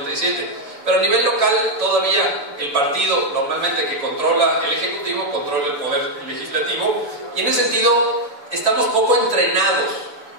pero a nivel local todavía el partido normalmente que controla el ejecutivo controla el poder legislativo, y en ese sentido estamos poco entrenados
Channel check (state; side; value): late; left; 6.9 ms